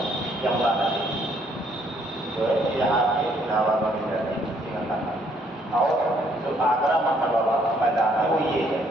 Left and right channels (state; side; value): normal; both; correlation 0.67